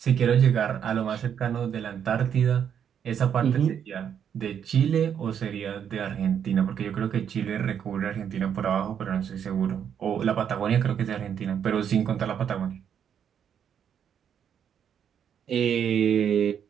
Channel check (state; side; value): quieter; left; 8.4 dB